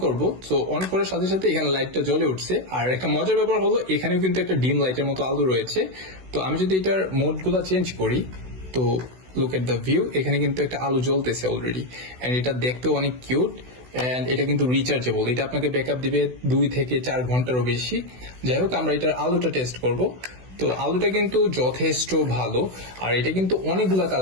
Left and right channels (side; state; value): left; late; 16 ms